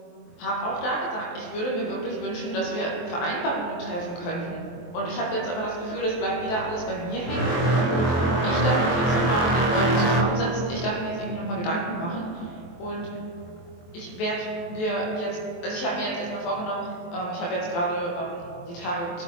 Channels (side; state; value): right; late; 23 ms